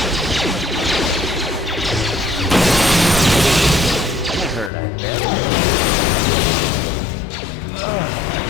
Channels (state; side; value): drops out; right; at 4.7 s